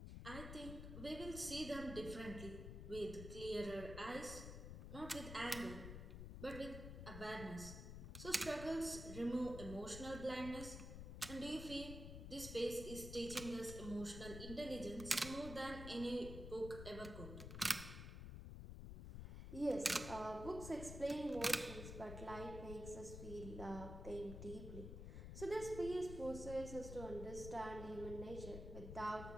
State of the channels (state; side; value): noise; left; rumble, 7 dB below the sound